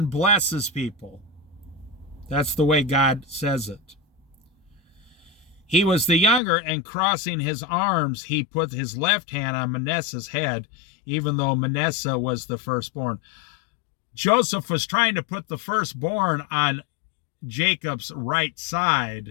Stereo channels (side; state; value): right; drops out; at 6.4 s